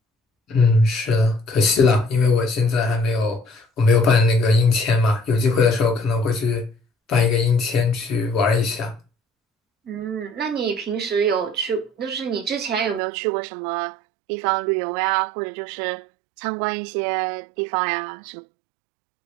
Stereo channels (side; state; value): left; drops out; at 13.0 s